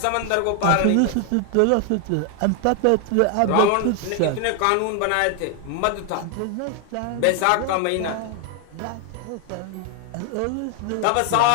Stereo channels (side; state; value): both; different; correlation 0.00